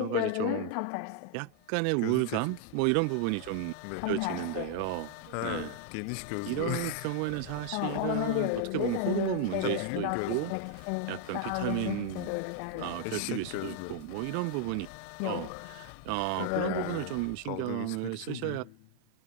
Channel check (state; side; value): different; both; correlation 0.00